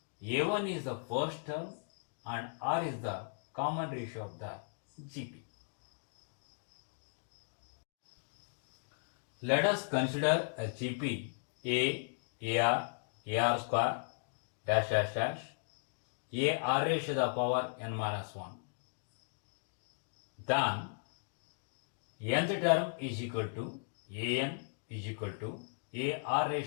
A1 is the first term and R is the common ratio of the GP. Let us consider a GP A, AR, AR square, dash dash dash, AR raised to the power n minus 1. Then nth term is equal to AN is equal to AR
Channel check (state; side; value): silent; right; digital silence